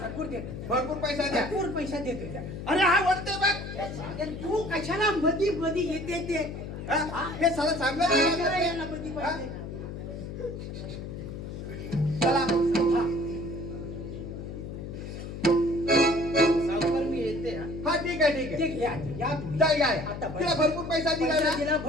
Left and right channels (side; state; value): left; noise; hum, 8 dB below the sound